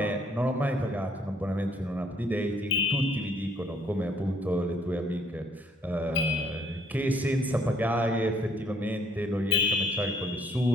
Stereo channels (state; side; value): normal; both; correlation 0.65